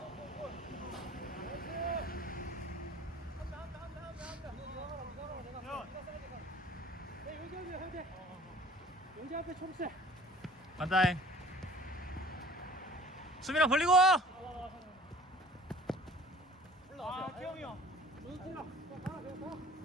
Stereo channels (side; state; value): both; normal; correlation 0.48